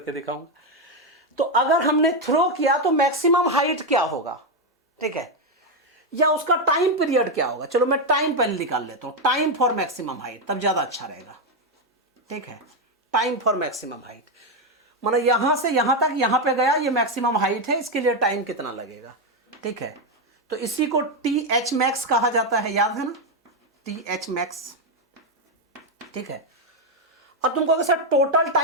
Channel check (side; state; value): both; normal; correlation 0.06